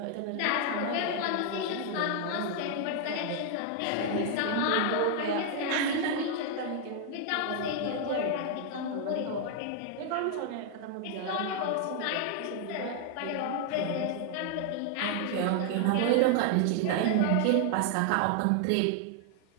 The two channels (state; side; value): different; both; correlation 0.00